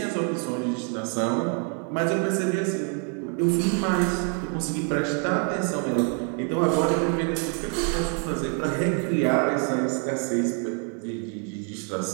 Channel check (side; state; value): left; quieter; 38.9 dB